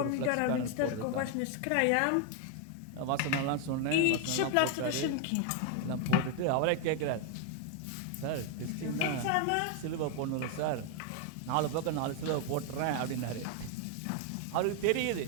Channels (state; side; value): different; both; correlation 0.00